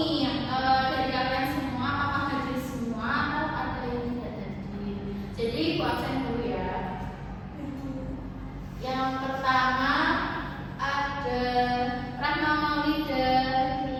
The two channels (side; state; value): both; identical; correlation 1.00